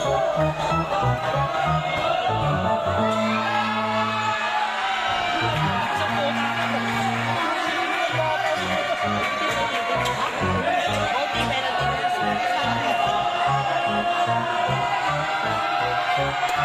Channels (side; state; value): both; identical; correlation 1.00